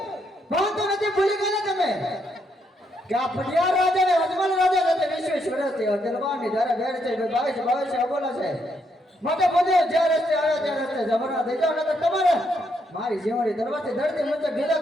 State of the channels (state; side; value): normal; both; correlation 0.76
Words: ભાન તો નથી ભૂલી ગયા તમે કે આ પડિયાર રાજા ને અજમલ રાજા સાથે 20 વર્ષથી અદલવાની ધારે બેડ છે 22 અબોલા છે માટે ભૂદેવ જે રસ્તે આવ્યા તે રસ્તે જમણા થઈ જાવ નકર તમારે મારી જીવણી દરવાજે ધરતી મુજબ ગીતા